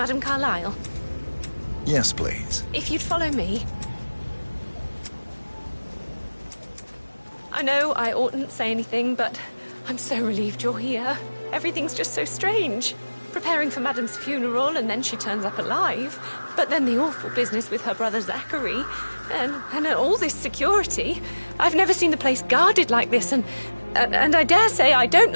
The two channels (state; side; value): inverted; both; correlation -1.00